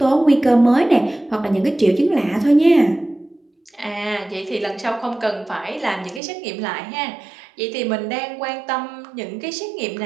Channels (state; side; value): drops out; left; at 6.2 s